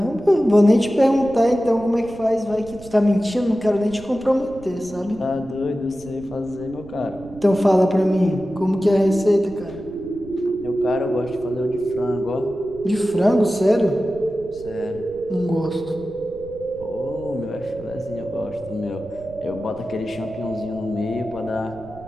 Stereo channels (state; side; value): noise; right; rumble, 19 dB below the sound